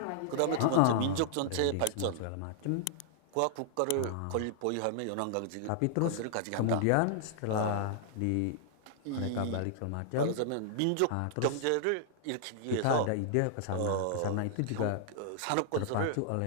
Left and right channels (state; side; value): different; both; correlation -0.01